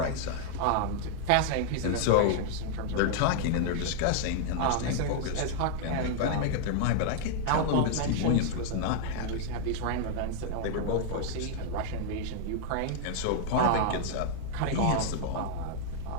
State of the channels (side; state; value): both; different; correlation -0.01